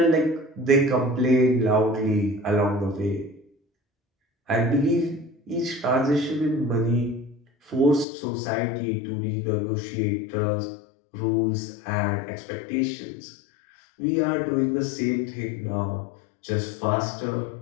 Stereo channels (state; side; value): drops out; right; at 8.1 s